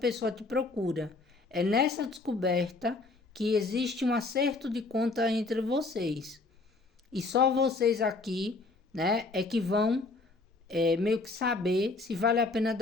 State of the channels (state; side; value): quieter; right; 3.5 dB